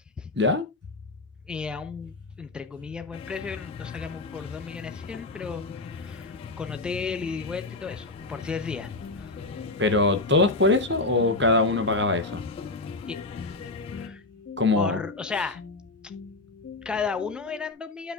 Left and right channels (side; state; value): right; quieter; 3.0 dB